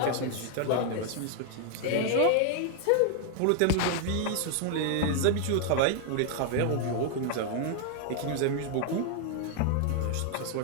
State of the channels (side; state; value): both; different; correlation 0.00